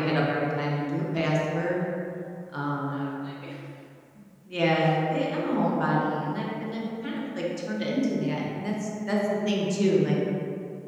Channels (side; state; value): both; identical; correlation 1.00